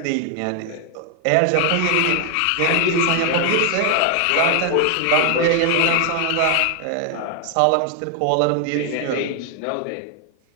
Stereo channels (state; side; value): different; both; correlation 0.00